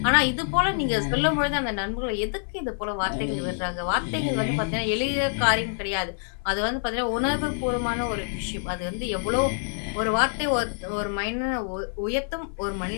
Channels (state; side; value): silent; right; 58 dB below the other